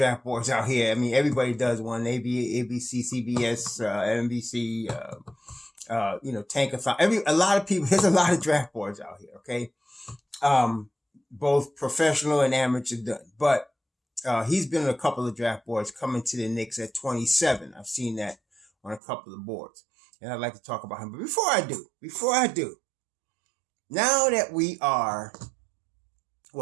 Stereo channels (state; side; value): drops out; left; at 19.0 s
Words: boards out here. I mean, everybody does one. ABC, CBS, NBC, Tankathon. A lot of people. There's a lot of draft boards out here. Okay, both professional and amateur done. But he's been on a couple of draft boards, coming to the Knicks at 27. I've seen that on a couple of boards, and I'd like to talk about him. But before I do, now that we are